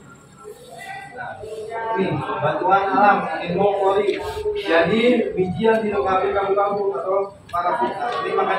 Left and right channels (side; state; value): both; identical; correlation 1.00